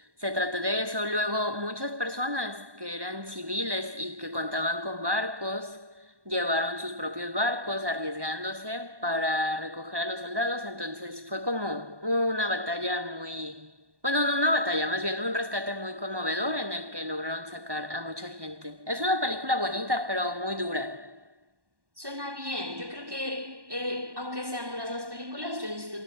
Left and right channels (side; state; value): left; late; 1.1 ms